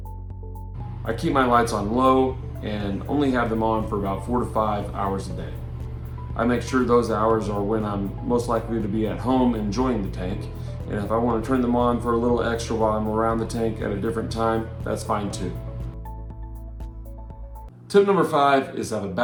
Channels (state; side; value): identical; both; correlation 1.00